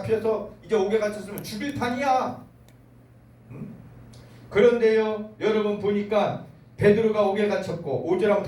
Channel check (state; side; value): identical; both; correlation 1.00